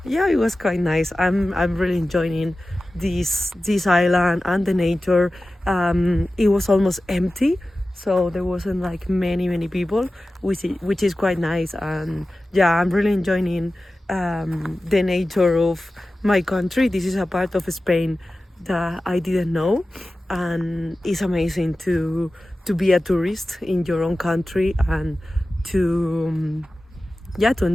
yeah, it was quite nice. I'm really enjoying this island and the nature. It was almost empty, so there wasn't like many people, which is quite nice. And yeah, I'm really enjoying the nature of my country. This is a part of Spain that I didn't know, and it's amazing to be a tourist in your own country and to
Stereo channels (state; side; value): normal; both; correlation 0.95